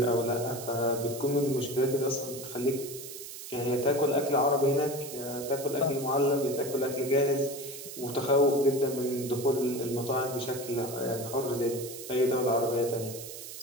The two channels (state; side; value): noise; right; hiss, 11 dB below the sound